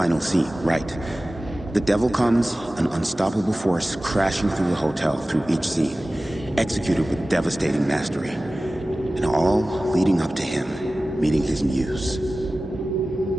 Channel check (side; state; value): both; normal; correlation 0.96